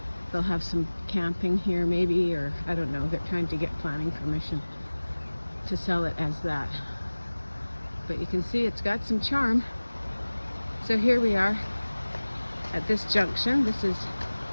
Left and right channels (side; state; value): both; inverted; correlation -1.00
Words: they'll have some camping here maybe, or I don't know. They're trying to get planning permission to sell it as that. But you can see it's got some charm. So here we are at this junction. This is